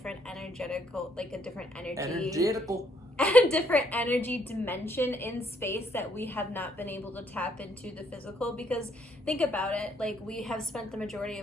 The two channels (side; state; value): both; normal; correlation 0.70